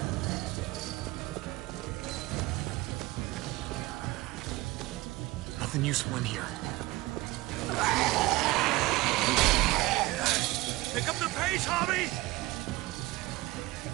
Nothing useful in here. Pick up the pace, Hobby!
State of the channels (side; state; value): left; quieter; 19.9 dB